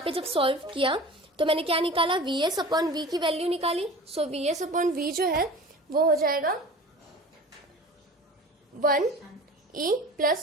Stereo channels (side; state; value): both; normal; correlation 0.39